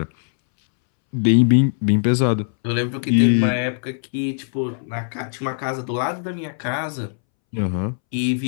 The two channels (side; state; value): right; silent; 65 dB below the other